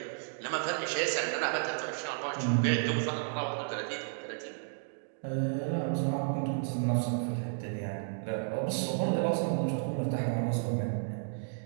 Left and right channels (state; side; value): silent; left; digital silence